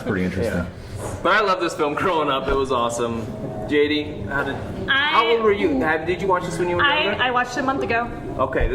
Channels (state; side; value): identical; both; correlation 1.00